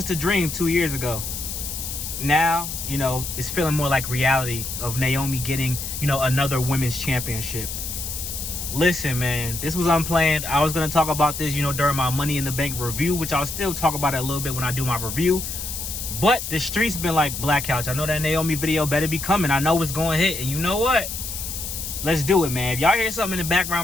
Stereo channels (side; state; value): left; noise; hiss, 6 dB below the sound